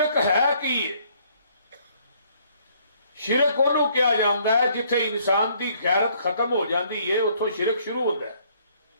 ہے کی شرک انہوں کیا جاندا ہے جتھے انسان دی غیرت ختم ہو جاندی ہے اتھوں شرک شروع ہوتا ہے.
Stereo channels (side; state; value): both; inverted; correlation -0.64